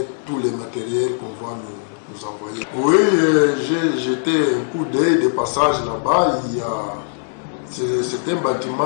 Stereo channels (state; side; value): silent; right; 66 dB below the other